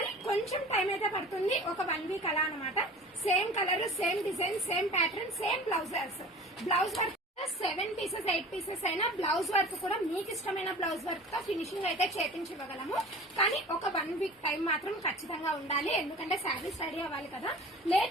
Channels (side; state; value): both; normal; correlation 0.40